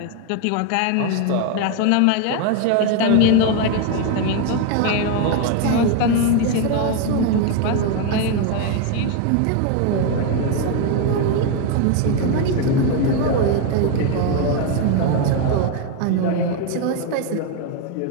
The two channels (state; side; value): different; both; correlation 0.01